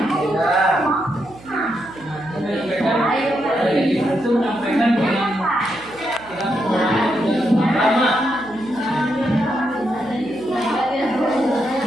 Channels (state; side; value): noise; right; hum, 21 dB below the sound